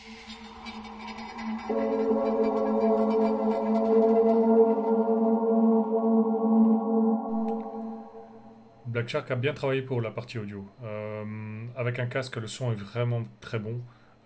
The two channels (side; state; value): both; identical; correlation 1.00